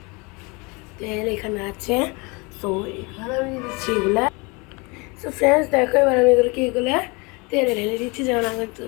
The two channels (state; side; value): quieter; right; 28.2 dB